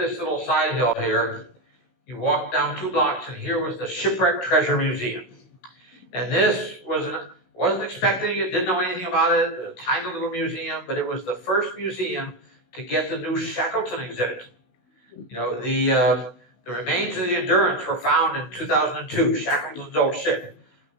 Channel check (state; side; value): late; right; 16 ms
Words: little side hill here. You walk down 2 blocks, and here was the Shipwreck Treasure Museum. And this wasn't expecting it, didn't know anything about it, a tiny little museum, but it was the first museum to get the new Shackleton exhibit. You know, the remains of the Endurance were found in 2002, Shackleton's old ship,